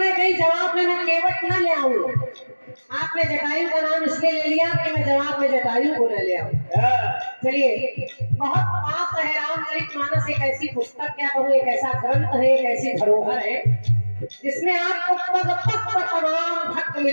हैं कहीं जवाब में मैं केवट न ले आऊं। आपने जटायु का नाम इसलिए ले लिया कि मैं जवाब में जटायु को न ले आऊं। चलिए बहुत पाप है, रामचरितमानस एक ऐसी पुस्तक, क्या कहूँ, एक ऐसा ग्रंथ है, एक ऐसी धरोहर है जिसमें आपको पग पग पर तमाम भक्त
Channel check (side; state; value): both; inverted; correlation -1.00